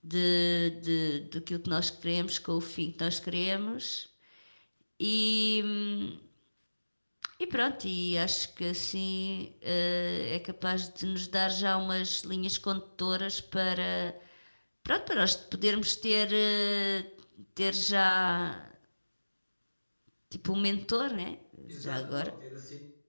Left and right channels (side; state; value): both; inverted; correlation -1.00